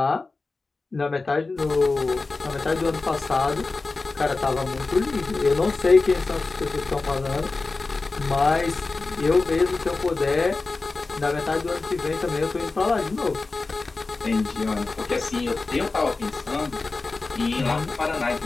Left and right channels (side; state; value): right; quieter; 3.7 dB